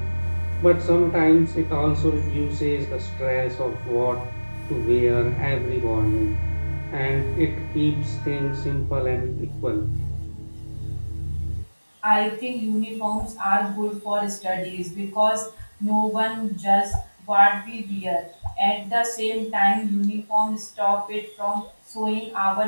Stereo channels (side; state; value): both; inverted; correlation -1.00